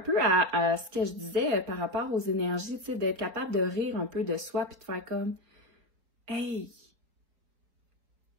à ce que je disais par rapport aux énergies, tu sais, d'être capable de rire un peu de soi puis de faire comme « Hey! »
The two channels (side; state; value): left; late; 4.3 ms